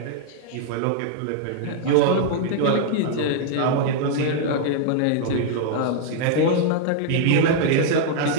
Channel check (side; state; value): both; different; correlation -0.01